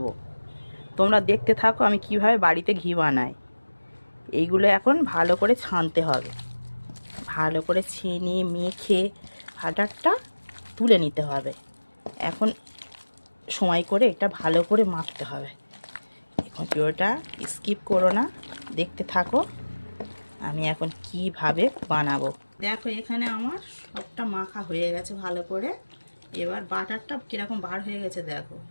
তোমরা দেখতে থাকো আমি কিভাবে বাড়িতে ঘি বানাই। এইগুলো এখন ভালো করে ছানতে হবে, ভালো করে ছেনে মেখে বাটারটা তুলে নিতে হবে। এখন সময় করে এটা ভালো করে মাখতে হবে। এখন ভিডিওটা স্কিপ করো না, দেখতে থাকো আমি এখন কিভাবে বানাবো। দেখো এখানে আমার সবটা মাখা হয়ে গেছে ভালো করে। এবার বাটারটা কীরকম বার হয়ে গেছে দেখো,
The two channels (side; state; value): both; inverted; correlation -1.00